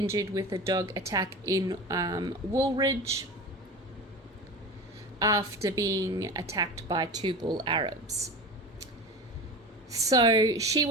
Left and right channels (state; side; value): normal; both; correlation 0.30